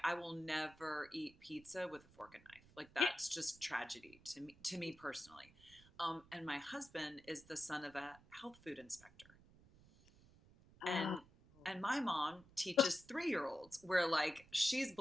I will never eat pizza with a fork and knife. Like, yeah. that's just tragedy to me personally. And my husband is the son of a health food inspector, uh, and my mom teaches 3-year-olds where like she's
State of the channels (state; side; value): noise; right; rumble, 24 dB below the sound